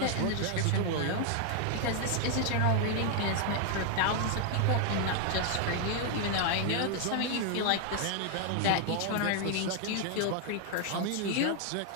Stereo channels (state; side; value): different; both; correlation 0.00